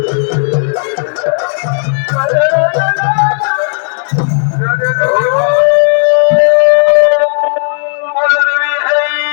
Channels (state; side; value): silent; right; digital silence